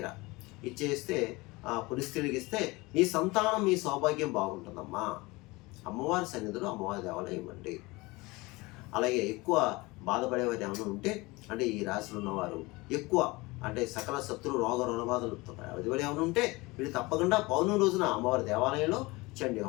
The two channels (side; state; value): right; quieter; 23.1 dB